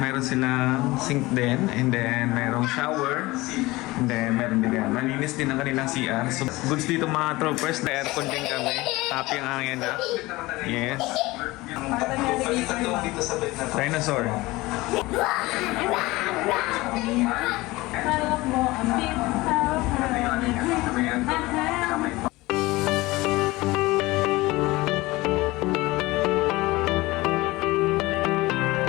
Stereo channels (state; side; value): quieter; right; 20.4 dB